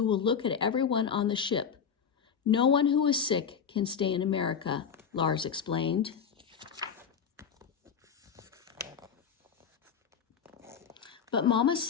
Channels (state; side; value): quieter; right; 7.1 dB